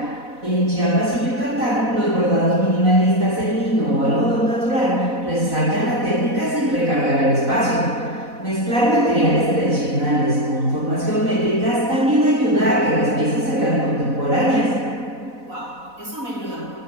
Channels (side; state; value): left; late; 4.1 ms